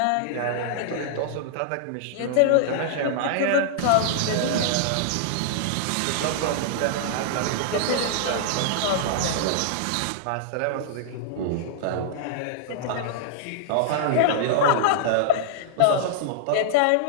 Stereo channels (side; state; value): both; different; correlation -0.01